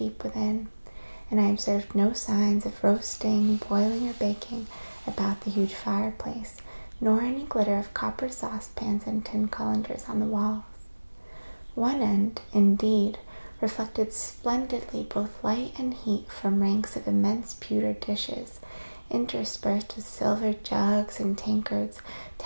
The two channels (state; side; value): inverted; both; correlation -1.00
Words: within, and I observed no signs of roasting, boiling, or baking about the huge fireplace, nor any glitter of copper saucepans and tin colanders on the walls. One end, indeed, reflected splendidly both light and heat from ranks of immense pewter dishes, interspersed with silver jugs and tankards